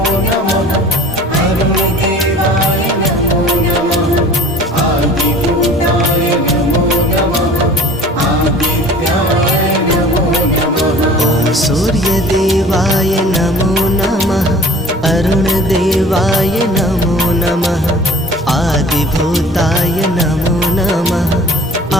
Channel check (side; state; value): both; normal; correlation 0.45